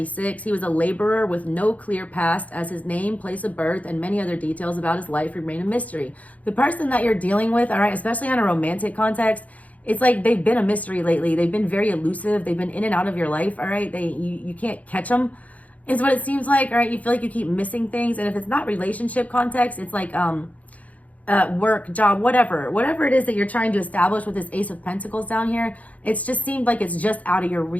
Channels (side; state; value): right; late; 0.071 ms